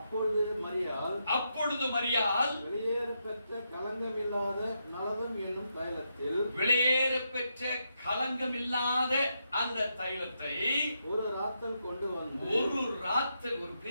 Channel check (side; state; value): both; inverted; correlation -0.82